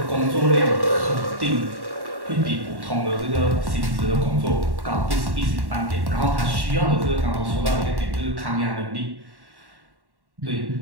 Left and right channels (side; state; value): left; late; 1.1 ms